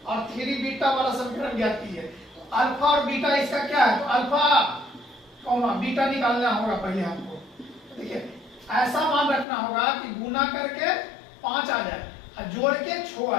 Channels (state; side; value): drops out; right; at 9.5 s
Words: और 3 बीटा वाला समीकरण ज्ञात कीजिए। तो अल्फा और बीटा इसका क्या है? तो अल्फा कौन बीटा निकालना होगा पहले हमको। देखिए, ऐसा मान रखना होगा कि गुना करके 5 आ जाए और जोड़ के 6